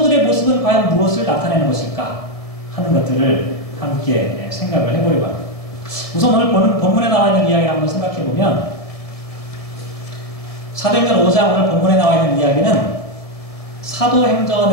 모습은 과연 무엇을 나타내는 것일까? 하는 것들을 함께 생각을 해보려고 합니다. 우선 오늘 본문에 나와 있는 이야기를 한번 생각해보면 사도행전 5장 오늘 본문에 나와 있는 이야기는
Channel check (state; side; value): late; right; 1.7 ms